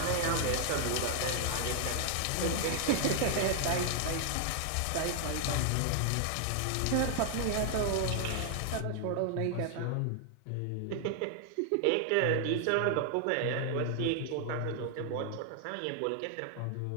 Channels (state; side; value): different; both; correlation 0.00